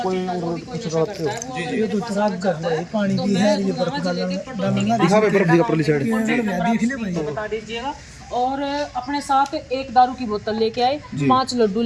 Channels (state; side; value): identical; both; correlation 1.00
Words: कोई कुछ करते हो? जी ये तो खराब कर रहा है, पानी भी है, ये बर्फ डालूंगा दिखा भाई बर्फ दिखा परली साइड। देख ले भाई। बता दीजिएगा। और अपने साथ एक दारू की बोतल लेके आए, 5 लड्डू